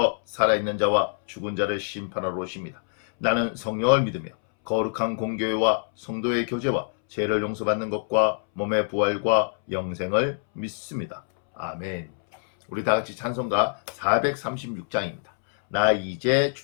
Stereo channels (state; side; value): silent; right; 62 dB below the other